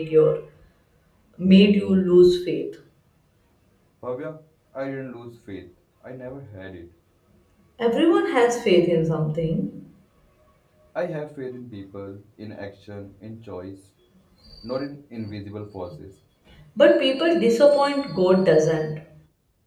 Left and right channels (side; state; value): both; identical; correlation 1.00